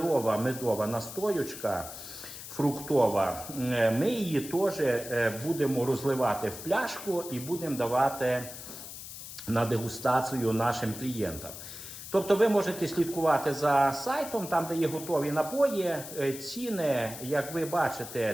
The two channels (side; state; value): left; noise; hiss, 11 dB below the sound